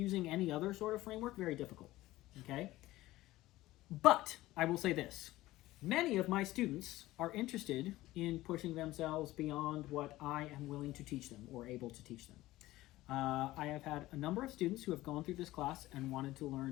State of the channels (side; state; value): right; quieter; 17.0 dB